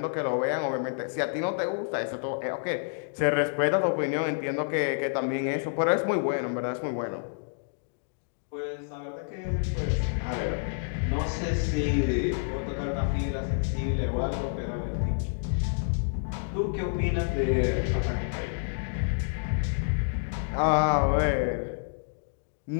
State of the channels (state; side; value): silent; right; digital silence